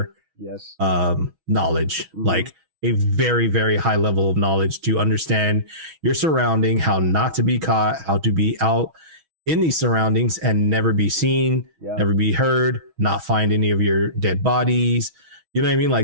knowledge, like a very, very high level of knowledge to understand your surrounding, how not to be caught, how to be out in these surroundings and never be seen, never be heard, not find any of your dead bodies. You know what I mean?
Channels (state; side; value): late; left; 6.2 ms